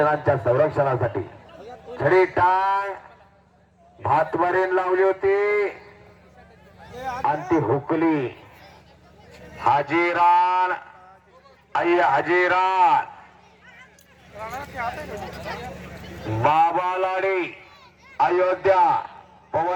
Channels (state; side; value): identical; both; correlation 1.00